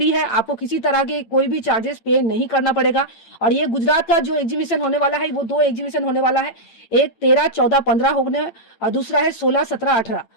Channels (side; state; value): right; late; 8.9 ms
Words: है, आपको किसी तरह के कोई भी चार्जेस पे नहीं करना पड़ेगा। और ये गुजरात का जो एग्जीबिशन होने वाला है, वो 2 एग्जीबिशन होने वाला है, एक 13, 14, 15 होने, और दूसरा है 16, 17, 18।